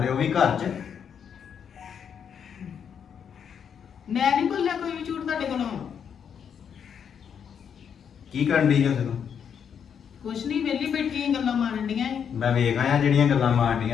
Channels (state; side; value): quieter; right; 7.7 dB